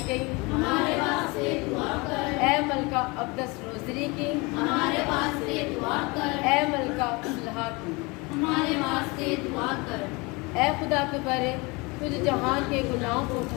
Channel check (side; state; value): right; quieter; 26.3 dB